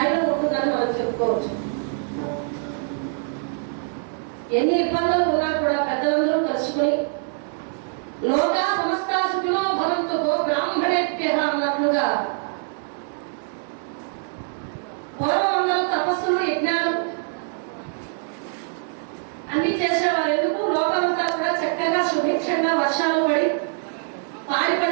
ఉంటుందని మనం చెప్పుకోవచ్చు. ఎన్ని ఇబ్బందులు ఉన్నా కూడా పెద్దలందరూ కలుసుకుని లోకా సమస్త సుఖినో భవంతు గో బ్రాహ్మణేభ్యః అన్నట్లుగా పూర్వం అందరూ తపస్సులు యజ్ఞాలు అన్ని చేసేవారు. ఎందుకు? లోకమంతా కూడా చక్కగా సుభిక్షంగా వర్షాలు పడి పాడి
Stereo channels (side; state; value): left; silent; 63 dB below the other